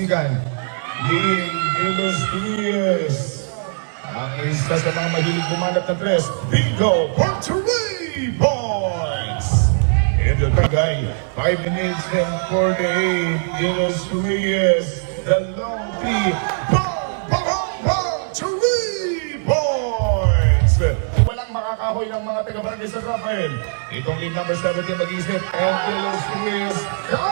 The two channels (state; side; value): silent; left; digital silence